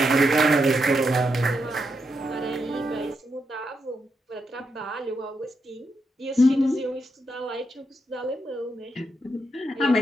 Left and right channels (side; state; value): both; normal; correlation 0.83